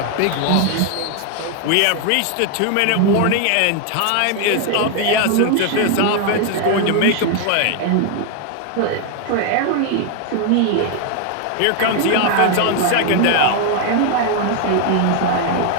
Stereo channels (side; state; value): both; different; correlation 0.01